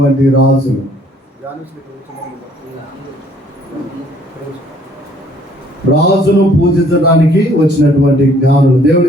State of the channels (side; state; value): both; normal; correlation 0.61